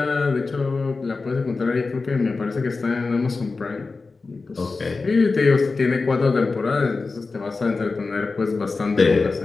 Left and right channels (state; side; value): quieter; right; 4.0 dB